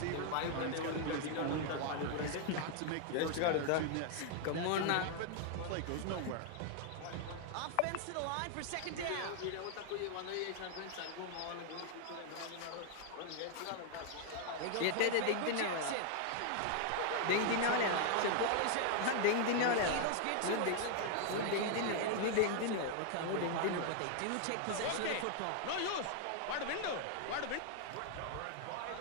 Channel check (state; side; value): different; both; correlation 0.00